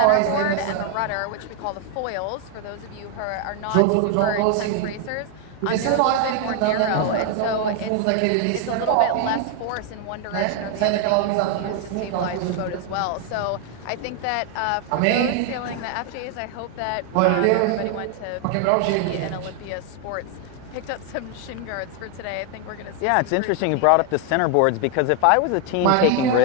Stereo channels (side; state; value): both; different; correlation 0.00